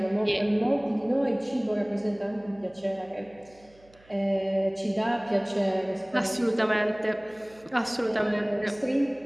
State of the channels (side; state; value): right; noise; hum, 28 dB below the sound